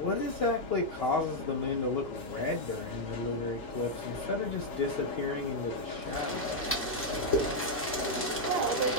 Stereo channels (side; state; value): both; normal; correlation -0.02